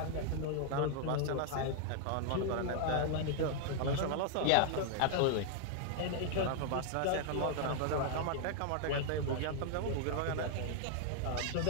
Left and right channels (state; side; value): different; both; correlation 0.00